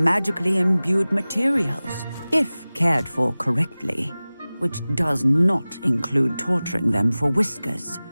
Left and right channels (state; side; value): inverted; both; correlation -0.98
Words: imbued materials, if cared for correctly, which does not include torturing them for whiskers.